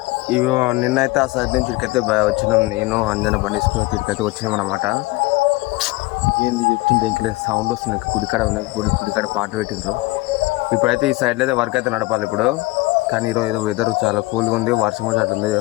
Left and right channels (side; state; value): right; quieter; 21.2 dB